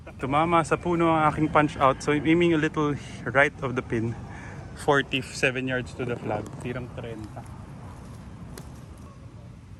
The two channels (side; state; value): both; identical; correlation 1.00